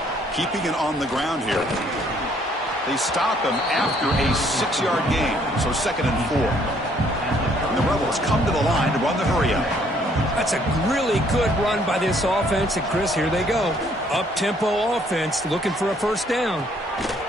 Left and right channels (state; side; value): normal; both; correlation 0.65